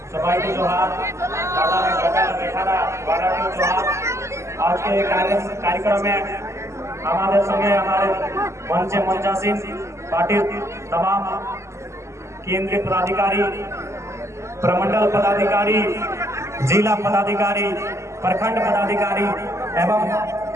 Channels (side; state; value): left; late; 0.13 ms